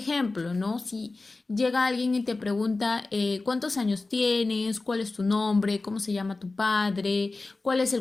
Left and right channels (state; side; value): quieter; right; 3.4 dB